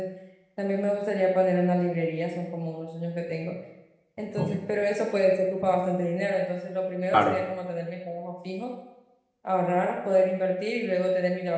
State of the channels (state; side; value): identical; both; correlation 1.00